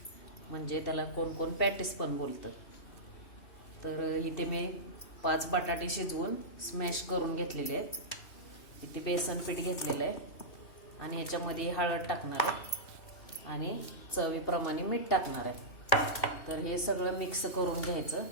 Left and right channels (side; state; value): right; late; 2.7 ms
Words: म्हणजे त्याला कोण कोण पॅटीस पण बोलतं. तर इथे मी 5 बटाटे शिजवून स्मॅश करून घेतलेले आहेत. इथे बेसन पीठ घेतलेलं आहे आणि याच्यामध्ये हळद टाकणार आहे आणि चवीप्रमाणे मीठ टाकणार आहे. तर हे सगळं मिक्स करून घ्यायचं.